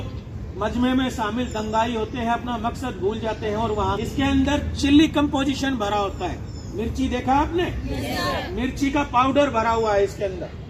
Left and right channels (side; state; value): both; identical; correlation 1.00